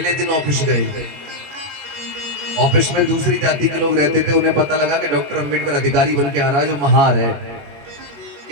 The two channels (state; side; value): late; left; 21 ms